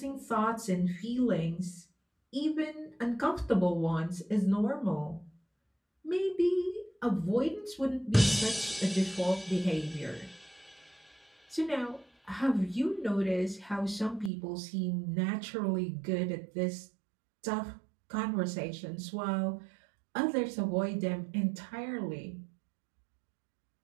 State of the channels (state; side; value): drops out; left; at 14.3 s